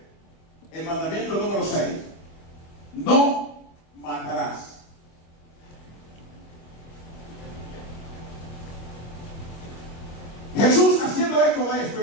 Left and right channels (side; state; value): right; late; 25 ms